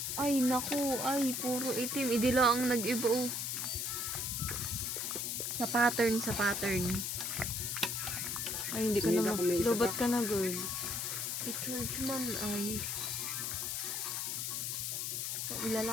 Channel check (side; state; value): left; noise; hiss, 1 dB below the sound